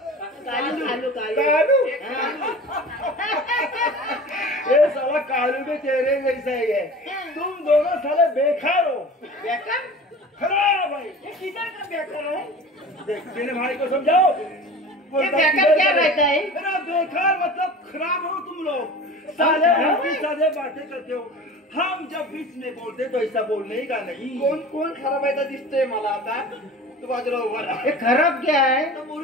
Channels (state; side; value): normal; both; correlation 0.38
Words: कालू कालू ये साला कालू भी तेरे जैसा ही है। तुम दोनों साले बेकार हो बेकार खराब है। ये किधर का बेकार है? देख मेरे भाई को समझाओ। ये बेकार क्या रहता है? मेरा बेकार मतलब खराब हो तुम लोग साले उल्टी साले बातें करते हो। हम जब बीच में बोलते तो ऐसा बोलने का नहीं। कोण खराब आहे दिसतोय मला आता तू बाजूला उभा राहा. हे खराब क्या है?